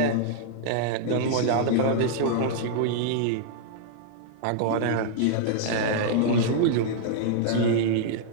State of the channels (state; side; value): different; both; correlation -0.01